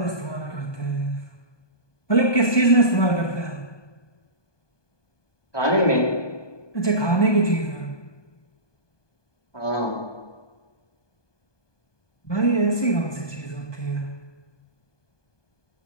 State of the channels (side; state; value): right; late; 1.2 ms